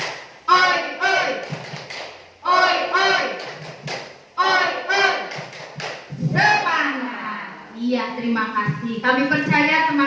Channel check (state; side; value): identical; both; correlation 1.00